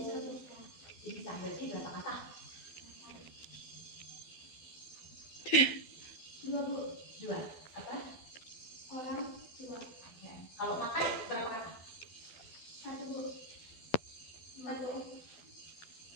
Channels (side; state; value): right; late; 12 ms